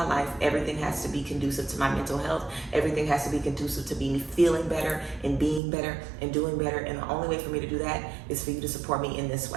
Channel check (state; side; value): drops out; left; at 5.6 s